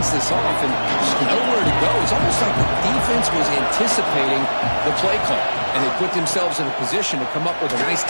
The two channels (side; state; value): both; inverted; correlation -1.00